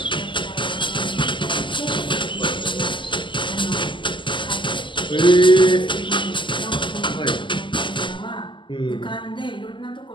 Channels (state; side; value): late; right; 0.24 ms